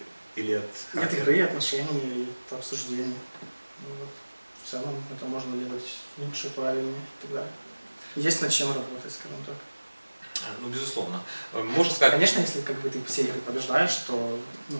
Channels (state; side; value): inverted; both; correlation -1.00